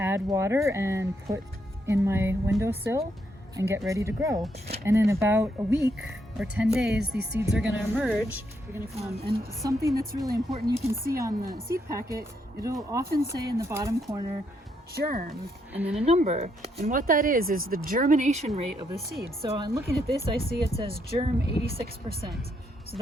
water and put in my windowsill and get ready to grow. And in about a week or 10 days, these seeds are going to emerge. And something that's really important, you can see on the seed packet, it'll often say in the bottom corner, germ, and then a number. And what that is the germination rate of the seed. So I'm looking at this, I see it says germ 86%. So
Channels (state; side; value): normal; both; correlation 0.76